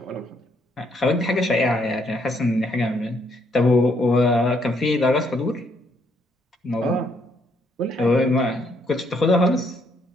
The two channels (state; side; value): normal; both; correlation 0.71